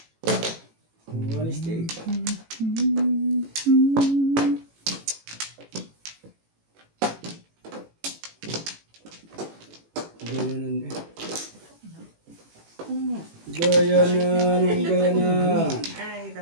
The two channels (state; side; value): late; left; 18 ms